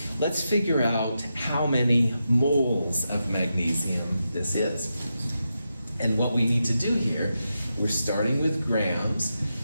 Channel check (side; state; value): both; inverted; correlation -0.87